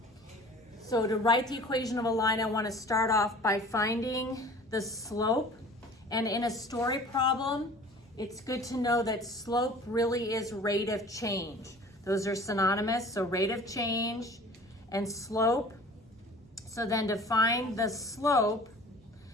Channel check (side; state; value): both; normal; correlation 0.45